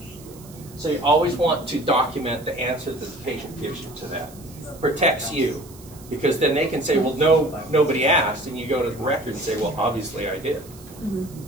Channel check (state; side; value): noise; right; hiss, 21 dB below the sound